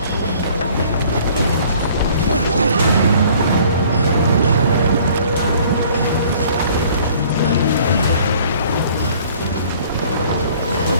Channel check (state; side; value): inverted; both; correlation -0.54